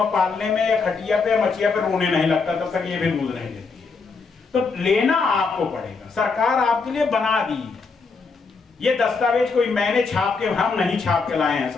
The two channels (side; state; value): right; quieter; 4.6 dB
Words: पालने में या खटिया पे या मचिया पे रोने नहीं लगता तब तक ये भी दूध नहीं देती है। तो लेना आपको पड़ेगा, सरकार आपके लिए बना दी। ये दस्तावेज कोई मैंने छाप के, हम नहीं छाप के लाए हैं